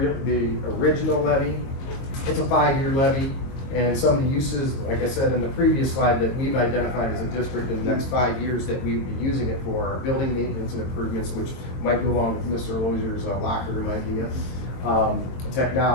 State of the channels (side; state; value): right; late; 22 ms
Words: original levy. It's a 5-year levy. And some of the uses, like I said in the previous slide, that we've identified as a district in the next 5 years that we would be using it for are building maintenance and improvements, which might go along with Mr. Loisier's locker room idea.